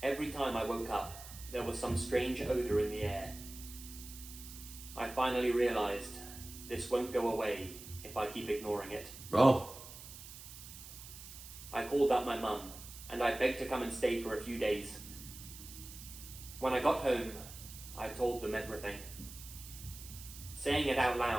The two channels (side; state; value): right; noise; hiss, 14 dB below the sound